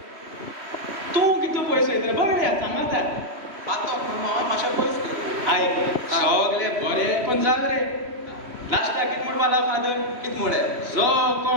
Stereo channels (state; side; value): late; left; 3.1 ms